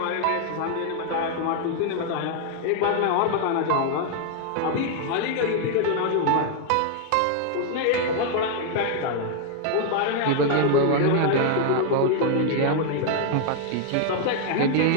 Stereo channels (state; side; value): different; both; correlation 0.00